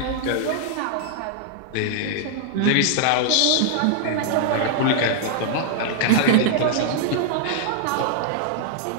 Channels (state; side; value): different; both; correlation -0.01